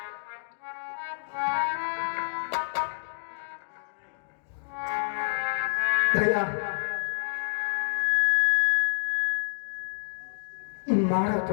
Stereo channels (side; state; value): right; silent; digital silence